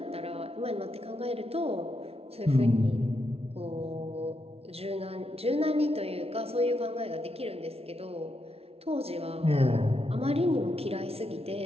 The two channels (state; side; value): late; left; 0.29 ms